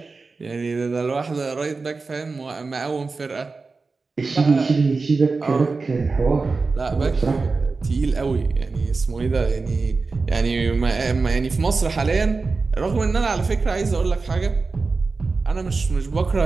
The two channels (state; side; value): quieter; left; 4.1 dB